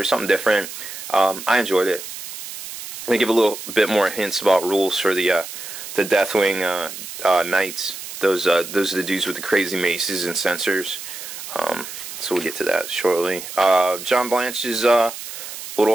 something different. I enjoyed it. They give a little bit more hints about rules for the Deathwing Knights. Those are the dudes with the crazy maces and sensors. So we'll get to that shortly. John Blanche's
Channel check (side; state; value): right; noise; hiss, 10 dB below the sound